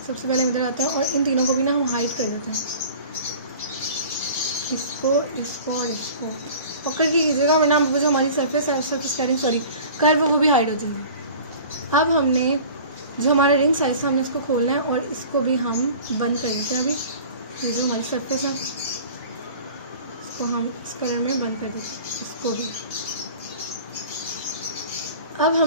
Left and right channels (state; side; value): inverted; both; correlation -0.43